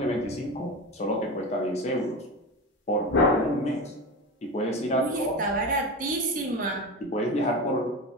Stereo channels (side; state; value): both; normal; correlation 0.24